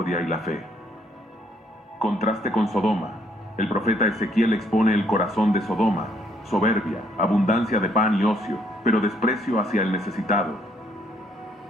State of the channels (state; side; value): normal; both; correlation 0.68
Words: y la fe. Contraste con Sodoma. El profeta Ezequiel expone el corazón de Sodoma: soberbia, abundancia de pan y ocio, pero desprecio hacia el necesitado.